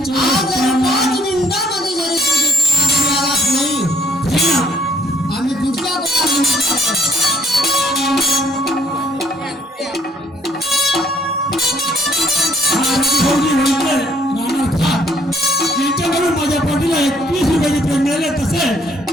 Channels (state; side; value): normal; both; correlation 0.62